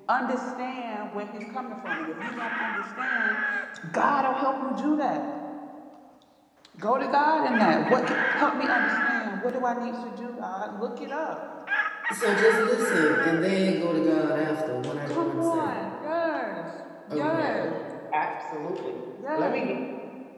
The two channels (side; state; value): both; identical; correlation 1.00